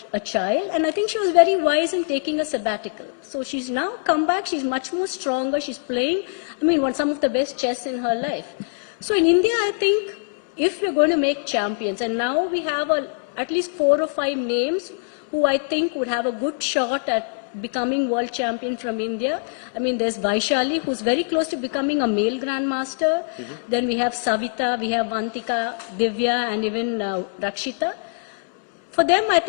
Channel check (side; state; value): right; silent; 63 dB below the other